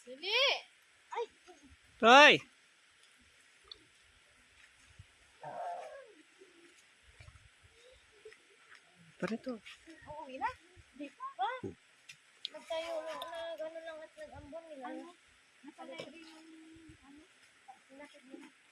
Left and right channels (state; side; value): identical; both; correlation 1.00